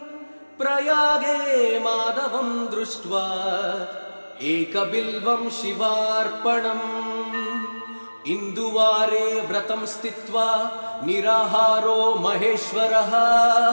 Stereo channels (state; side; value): inverted; both; correlation -1.00